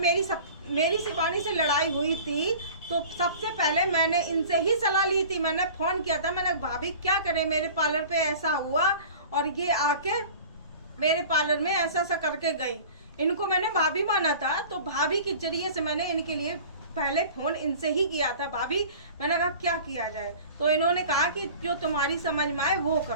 शिवानी से लड़ाई हुई थी तो सबसे पहले मैंने इनसे ही सलाह ली थी, मैंने फोन किया था, मैंने भाभी क्या करें, मेरे पार्लर पे ऐसा हुआ, और ये आके मेरे पार्लर में ऐसा करके गई। इनको मैंने भाभी माना था, तो भाभी के जरिए से मैंने इनके लिए पहले फोन इनसे ही किया था, भाभी मैंने कहा क्या किया जाए, तो इन्होंने कहा कि जो तुम्हारी समझ में आए वो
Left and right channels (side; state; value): both; inverted; correlation -0.41